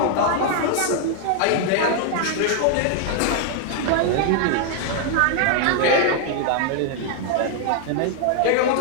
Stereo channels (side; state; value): both; different; correlation 0.00